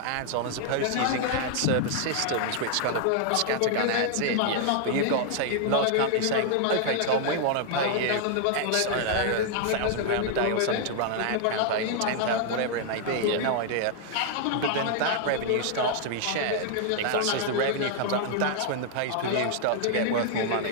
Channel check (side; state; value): both; different; correlation 0.00